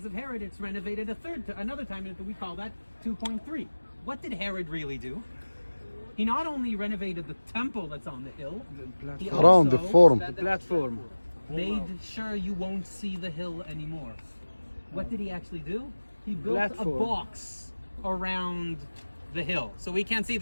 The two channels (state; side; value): inverted; both; correlation -1.00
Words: of Herod, it's renovated another time, and we call that 2.3. What did Herod really do? He not only renovated the temple that's on the hill, he Around the forum. Platform. made sure you won't see the hill anymore. What did he actually do? He built a box around the hill, so we can't see